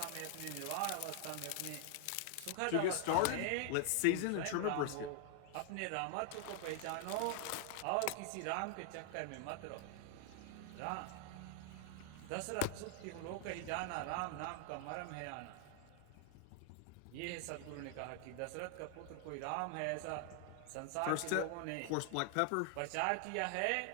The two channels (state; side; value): different; both; correlation 0.00